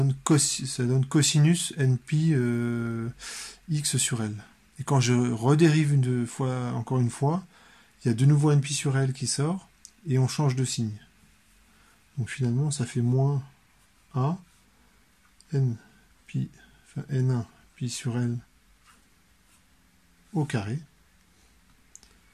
cosinus npi x sur L. Et quand je redérive encore une fois, il y a de nouveau npi sur L qui sort, et on change de signe. Donc finalement, ça fait moins a n1 pi sur L au carré,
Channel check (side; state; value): both; identical; correlation 1.00